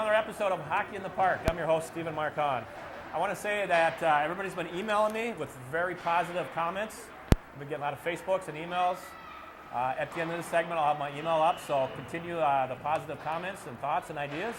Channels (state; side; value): identical; both; correlation 1.00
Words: episode of Hockey in the Park. I'm your host, Stephen Hahn. I want to say that everybody's been emailing me with very positive comments. I've been getting a lot of Facebooks and emails. At the end of this segment, I'll have my email up, so continue the positive comments and thoughts and ideas.